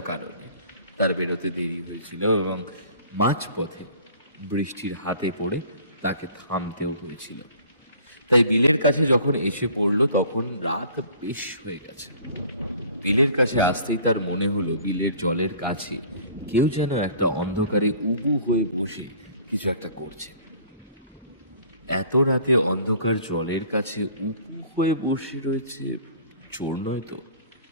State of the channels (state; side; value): inverted; both; correlation -0.50